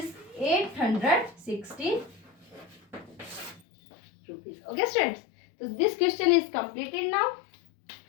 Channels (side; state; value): right; drops out; at 3.6 s